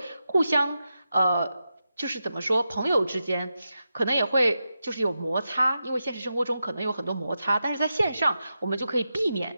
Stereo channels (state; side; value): inverted; both; correlation -0.88